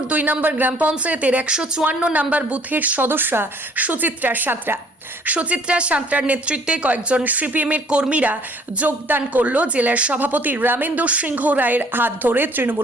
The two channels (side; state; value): both; normal; correlation 0.58